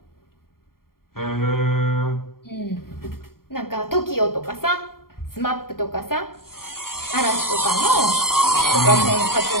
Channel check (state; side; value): late; right; 0.93 ms